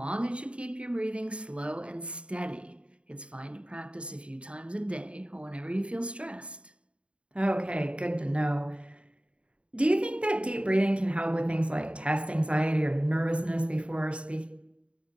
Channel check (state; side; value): late; left; 0.059 ms